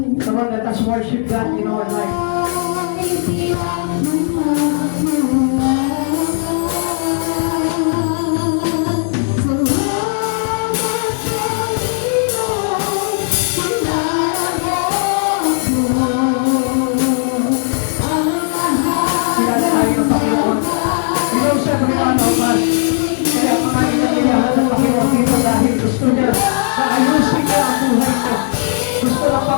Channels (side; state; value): right; silent; 69 dB below the other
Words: Come on, let us worship God in our life. Kilala tayo ng Panginoon. Ikaw siya pinanabas. Kaya mga inaniyahan ng Panginoon dito dahil gusto niya na ayusin niya ang buhay mo. Gusto ng